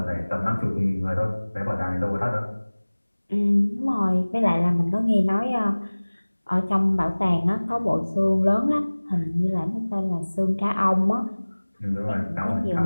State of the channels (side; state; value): both; inverted; correlation -1.00